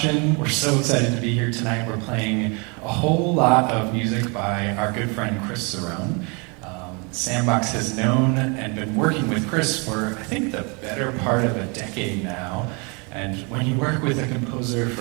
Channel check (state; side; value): quieter; left; 31.8 dB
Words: We're so excited to be here tonight. We're playing a whole lot of music by our good friend Chris Cerrone. Sandbox has known and been working with Chris for, I think, the better part of a decade now. And when you work with a composer